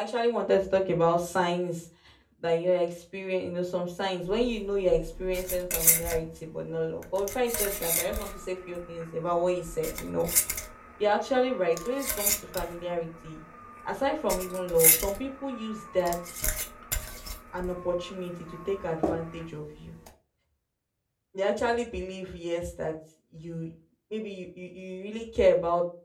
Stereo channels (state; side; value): identical; both; correlation 1.00